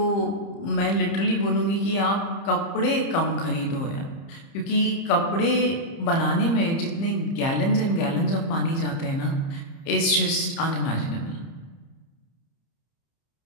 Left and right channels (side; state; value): right; late; 30 ms